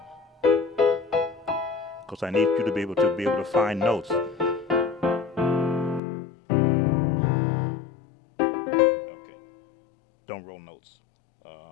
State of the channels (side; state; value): right; drops out; at 6.0 s